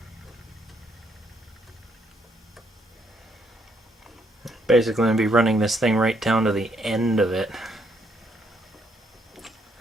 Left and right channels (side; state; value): both; normal; correlation 0.72